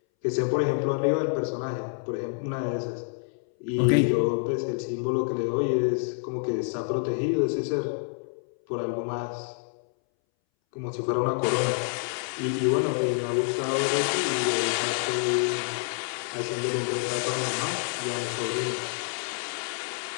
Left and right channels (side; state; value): right; silent; 60 dB below the other